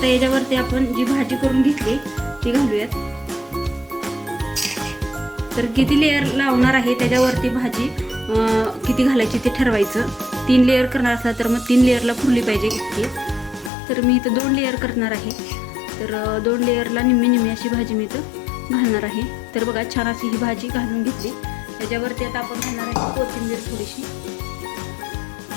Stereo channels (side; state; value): right; drops out; at 13.7 s